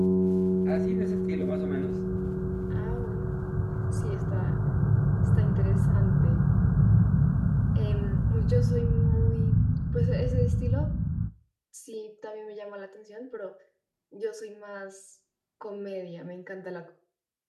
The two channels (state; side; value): identical; both; correlation 1.00